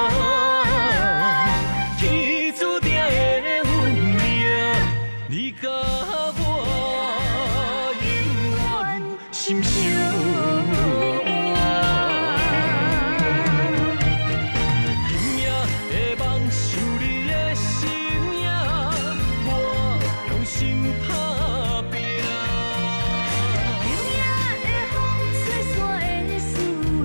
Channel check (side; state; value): both; inverted; correlation -1.00